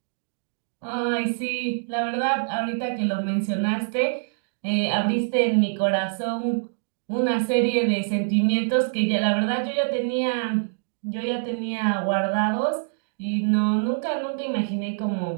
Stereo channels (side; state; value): left; silent; digital silence